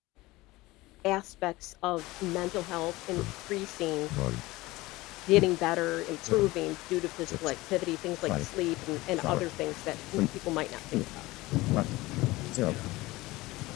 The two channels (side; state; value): right; quieter; 19.9 dB